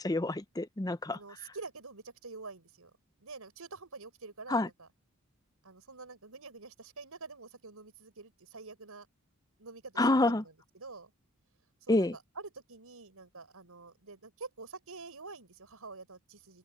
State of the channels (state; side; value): normal; both; correlation 0.62